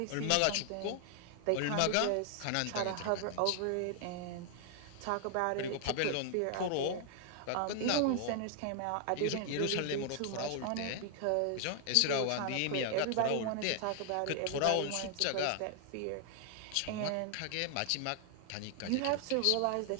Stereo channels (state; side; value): different; both; correlation 0.00